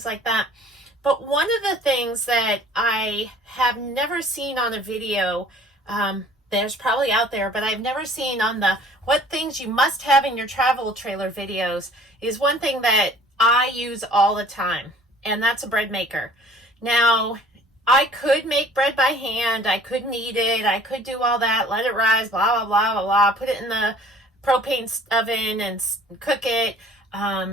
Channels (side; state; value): both; normal; correlation 0.51